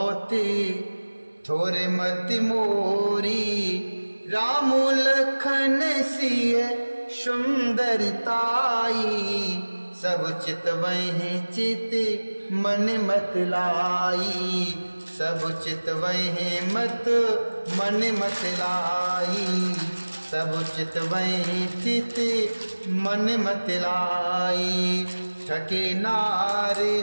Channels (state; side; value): inverted; both; correlation -1.00